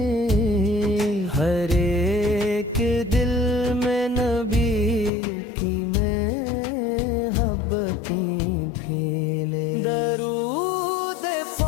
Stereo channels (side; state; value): right; drops out; at 5.1 s